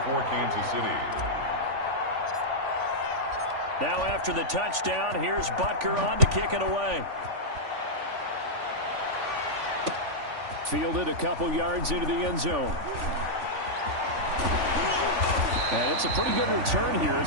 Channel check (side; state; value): left; late; 3.5 ms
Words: for Kansas City. Now after the touchdown, here's Butker on to kick it away. Fielded a couple yards into the end zone. And it's a pretty good return here